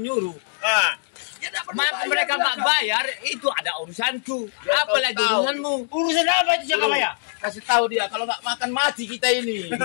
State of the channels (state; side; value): silent; right; digital silence